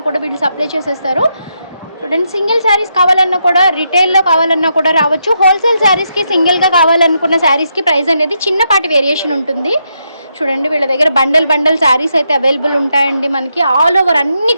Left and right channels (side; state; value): both; inverted; correlation -0.81